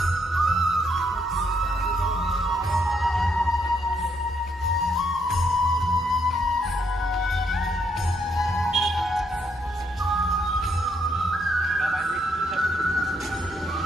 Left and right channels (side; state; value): both; normal; correlation 0.74